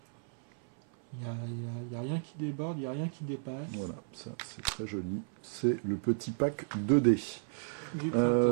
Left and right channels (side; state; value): left; silent; 55 dB below the other